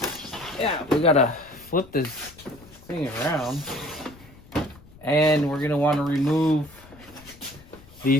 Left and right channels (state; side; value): noise; left; rumble, 23 dB below the sound